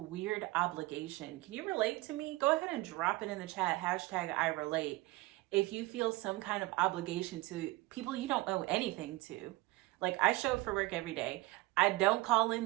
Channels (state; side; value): quieter; left; 21.0 dB